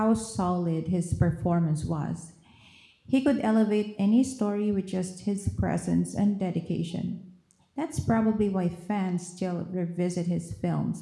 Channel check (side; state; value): both; identical; correlation 1.00